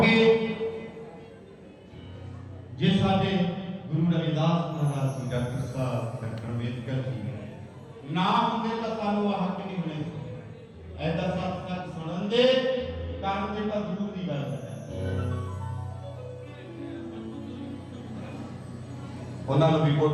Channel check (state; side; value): identical; both; correlation 1.00